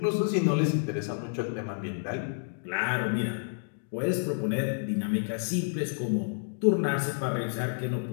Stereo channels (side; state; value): right; silent; digital silence